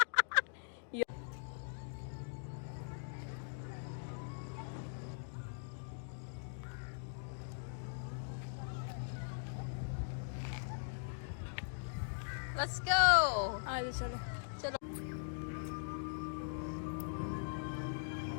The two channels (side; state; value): right; silent; digital silence